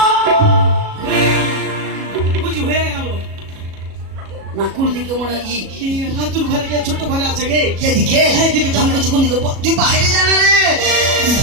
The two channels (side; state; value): left; late; 37 ms